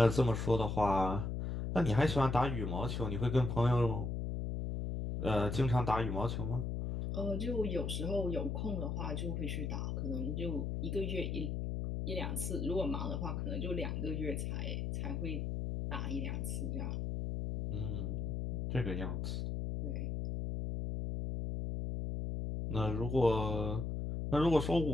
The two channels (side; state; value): left; noise; hum, 2 dB below the sound